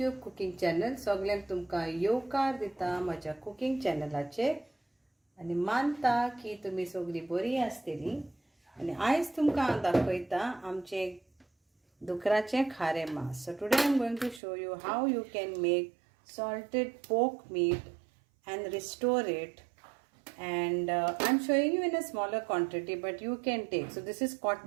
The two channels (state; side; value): drops out; left; at 14.4 s